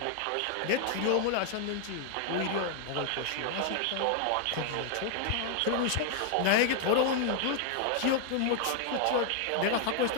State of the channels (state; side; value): different; both; correlation 0.00